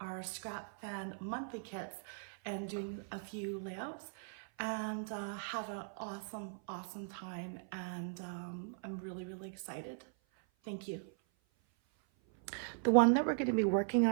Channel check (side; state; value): left; silent; 52 dB below the other